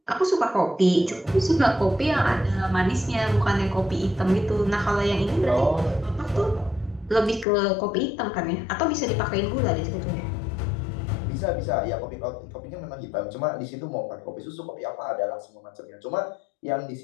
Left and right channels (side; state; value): right; drops out; at 7.5 s